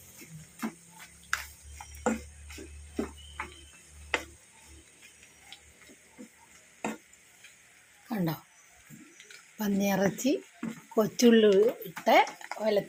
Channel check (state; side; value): identical; both; correlation 1.00